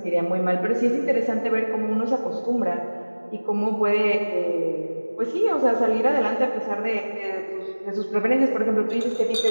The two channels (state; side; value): inverted; both; correlation -1.00